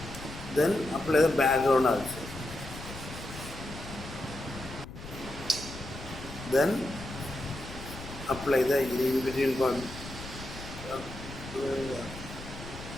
Then apply the background also. Then apply the in between part,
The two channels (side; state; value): left; noise; rumble, 12 dB below the sound